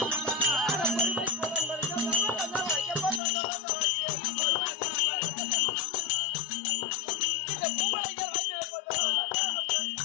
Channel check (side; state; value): right; drops out; at 3.2 s